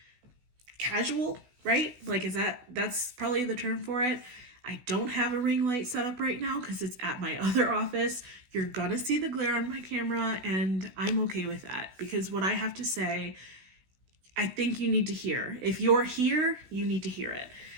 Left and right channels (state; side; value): late; left; 16 ms